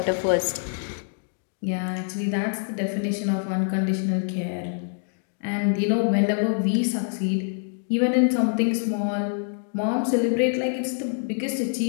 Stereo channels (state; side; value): silent; right; digital silence